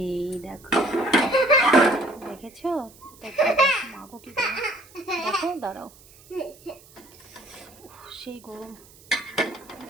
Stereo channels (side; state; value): right; noise; hiss, 24 dB below the sound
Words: দেখো, দেখেছো? মাগো কি গরম, দেখো, দাঁড়াও, সেই গরম।